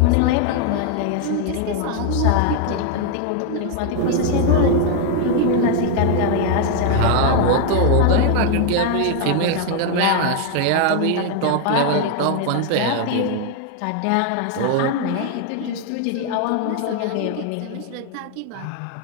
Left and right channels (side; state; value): both; different; correlation 0.01